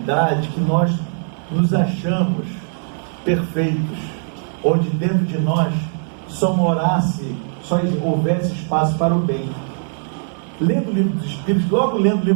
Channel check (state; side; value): silent; left; digital silence